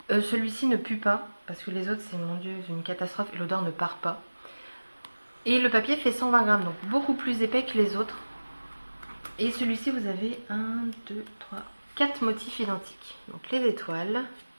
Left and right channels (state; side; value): inverted; both; correlation -1.00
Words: Celui-ci ne pue pas, parce que les autres, c'est, mon Dieu, une catastrophe, et l'odeur ne part pas. Et le papier fait 120 grammes, donc beaucoup plus épais que les autres. Et celui-ci, vous avez 1, 2, 3, 4 motifs identiques. Donc les étoiles,